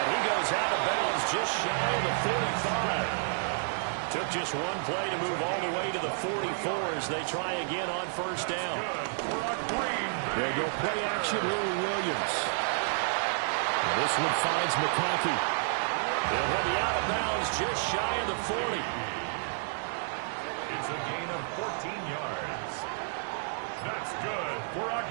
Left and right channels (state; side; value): silent; left; digital silence